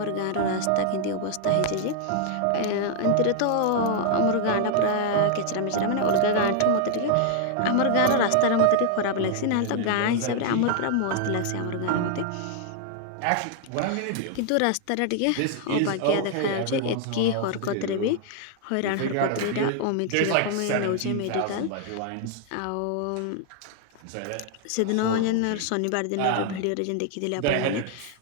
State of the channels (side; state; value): both; different; correlation 0.00